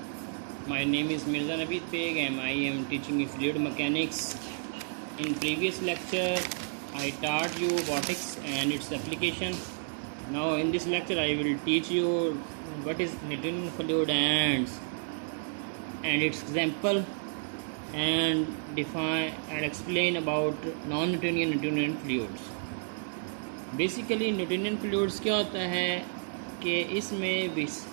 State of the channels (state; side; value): silent; left; 57 dB below the other